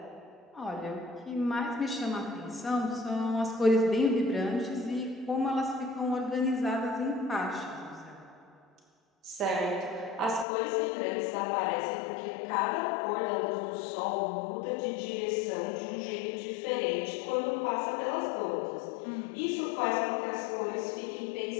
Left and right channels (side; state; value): right; drops out; at 10.5 s